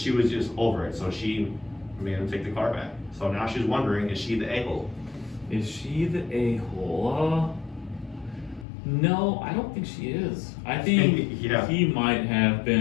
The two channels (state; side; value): drops out; right; at 8.7 s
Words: was just over it, so she made him take the car back. So now she's wondering, is she the a-hole? Is she the a-hole? No, I don't think she is. I think he might have